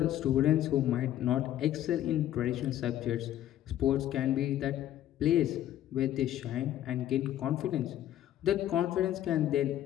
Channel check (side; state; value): right; quieter; 12.3 dB